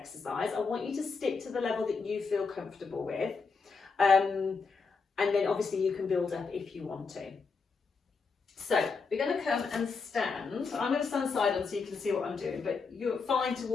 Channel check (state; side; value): quieter; right; 4.8 dB